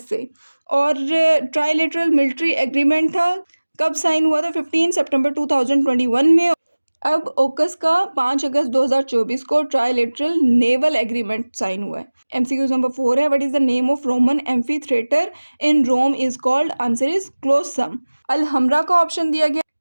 और ट्राइलेटरल मिलिट्री एग्रीमेंट था, कब साइन हुआ था? 15 सितंबर 2021 में। अब ओकस का 5 अगस्त 2024 को ट्राइलेटरल नेवल एग्रीमेंट साइन हुआ है। एमसीक्यू नंबर 4 है, what is the name of Roman amphi theatre in Rome is called? Answer is Colosseum. Alhambra का ऑप्शन दिया गया।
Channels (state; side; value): inverted; both; correlation -1.00